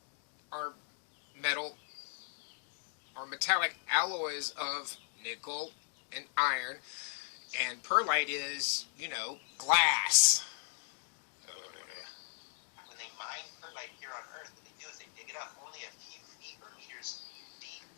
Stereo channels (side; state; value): right; silent; 53 dB below the other